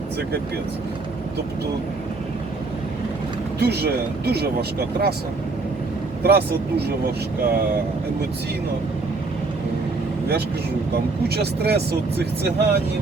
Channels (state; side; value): quieter; left; 3.7 dB